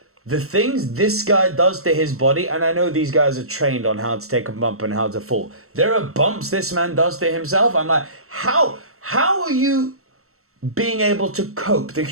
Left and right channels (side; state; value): left; late; 0.63 ms